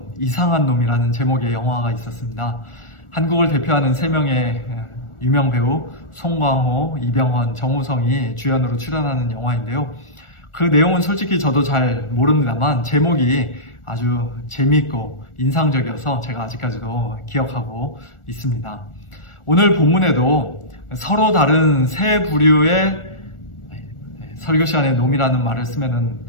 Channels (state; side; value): late; right; 1.4 ms